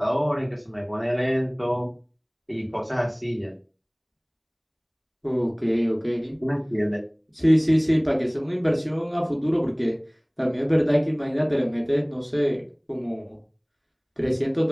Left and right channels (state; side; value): identical; both; correlation 1.00